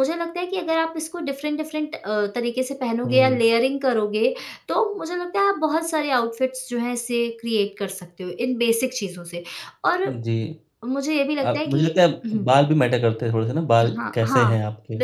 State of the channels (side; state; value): both; identical; correlation 1.00